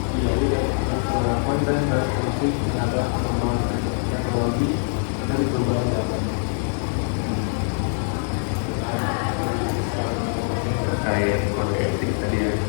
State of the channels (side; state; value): right; silent; 59 dB below the other